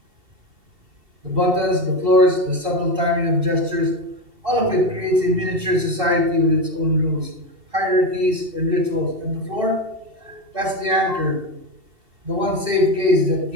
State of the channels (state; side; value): late; left; 2.7 ms